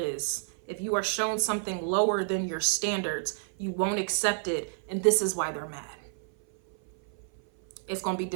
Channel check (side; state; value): left; silent; 56 dB below the other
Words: is, if you are shown something lower than your standards, you won't accept it, and this is why they're mad. It's going to be